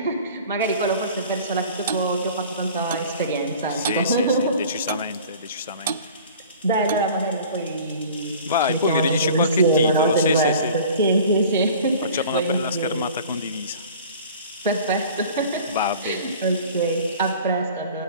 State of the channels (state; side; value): inverted; both; correlation -0.44